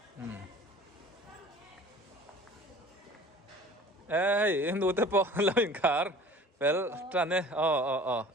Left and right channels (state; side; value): normal; both; correlation 0.45